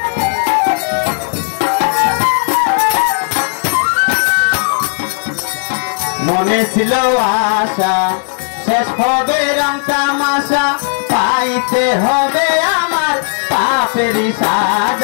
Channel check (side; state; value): right; silent; digital silence